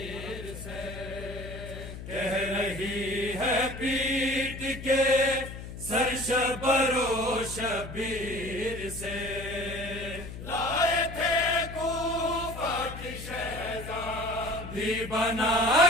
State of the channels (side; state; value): left; noise; hum, 11 dB below the sound